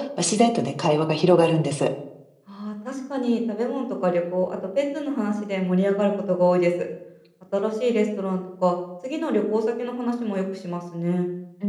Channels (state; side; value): identical; both; correlation 1.00